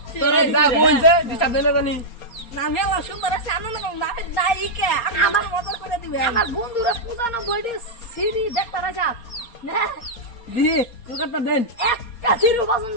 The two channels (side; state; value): right; late; 4.3 ms